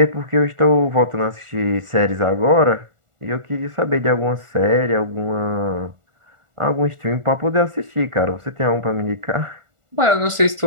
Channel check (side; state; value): left; late; 1.4 ms